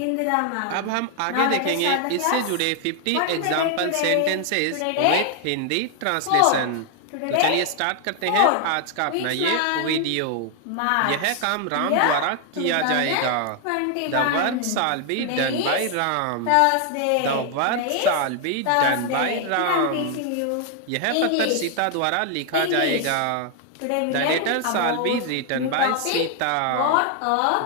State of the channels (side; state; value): both; different; correlation 0.00